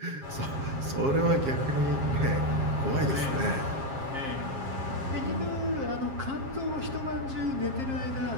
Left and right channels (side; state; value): left; late; 7.4 ms